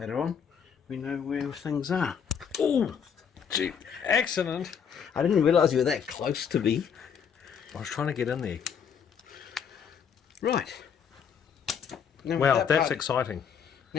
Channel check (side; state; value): right; quieter; 7.2 dB